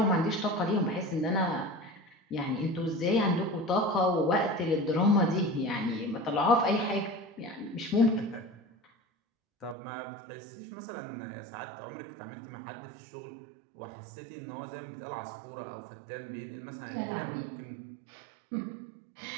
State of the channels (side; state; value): left; drops out; at 9.8 s